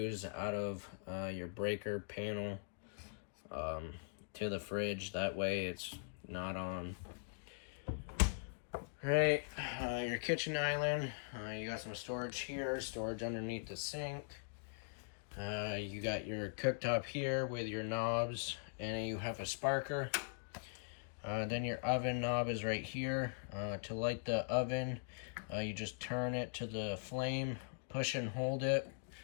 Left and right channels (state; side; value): silent; right; digital silence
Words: out of your breaker panel to the fridge. That way it's not on. Alright, your kitchen island. You got some storage here, storage underneath the sink. You got your cooktop here with your knobs, and you have a sparker. Then your oven knob is right here. To light the oven, you just turn it to the flame, push and hold it.